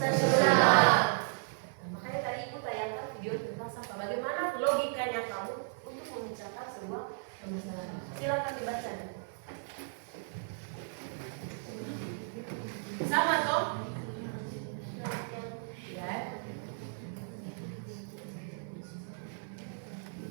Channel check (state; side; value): silent; left; 55 dB below the other